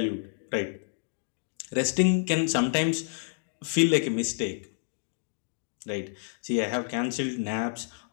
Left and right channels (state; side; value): silent; right; digital silence